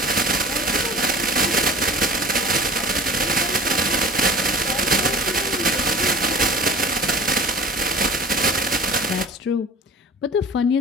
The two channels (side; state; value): both; normal; correlation 0.41